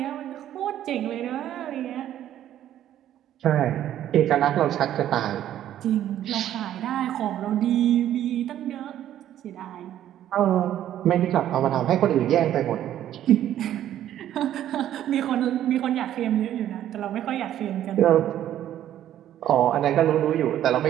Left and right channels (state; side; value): quieter; left; 11.7 dB